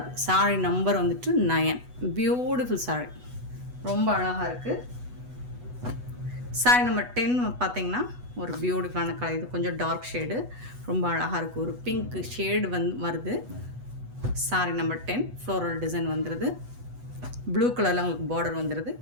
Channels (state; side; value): late; left; 8.1 ms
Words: சாரி நம்பர் வந்துட்டு 9. பியூட்டிஃபுல் சாரி, ரொம்ப அழகாக இருக்குது. சாரி நம்பர் 10 பார்த்தீங்கன்னா ஒரு பியூட்டிஃபுல்லான கலர். இது கொஞ்சம் டார்க் ஷேடு, ரொம்ப அழகாக இருக்குது. ஒரு பிங்க் ஷேடு வருது. சாரி நம்பர் 10 ஃப்ளோரல் டிசைன் வந்துடுது. ப்ளூ கலரில் உங்களுக்கு பார்டர் வந்துடுது.